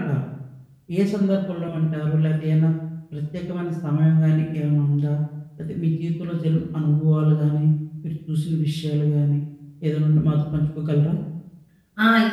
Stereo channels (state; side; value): identical; both; correlation 1.00